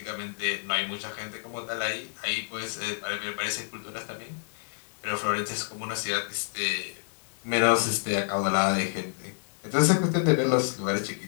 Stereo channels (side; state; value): right; silent; digital silence